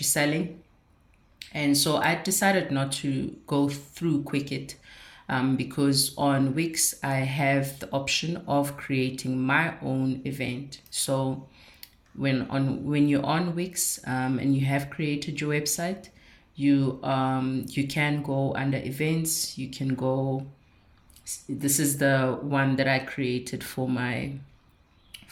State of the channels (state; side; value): identical; both; correlation 1.00